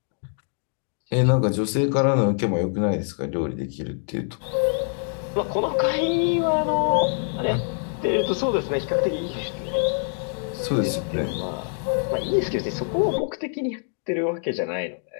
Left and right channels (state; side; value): silent; right; 58 dB below the other